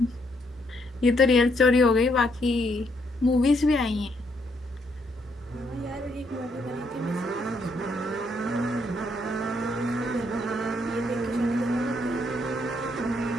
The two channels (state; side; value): normal; both; correlation 0.73